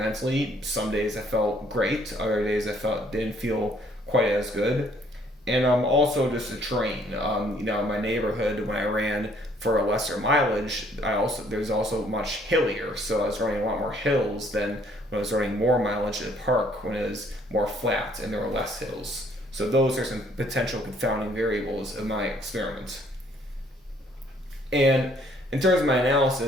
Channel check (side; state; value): both; normal; correlation 0.63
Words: Some days I felt great, other days I didn't feel quite as good. And also just the terrain. In my neighborhood, when I ran for a lesser mileage, there's also much hillier, so I was running a lot more hills than when I was running more mileage at the park when it was more flat and there were less hills. So those are some potential confounding variables of my experiment. And in terms of my